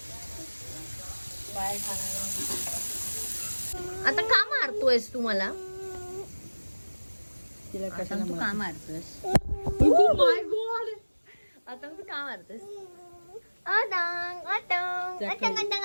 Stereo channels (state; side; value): inverted; both; correlation -1.00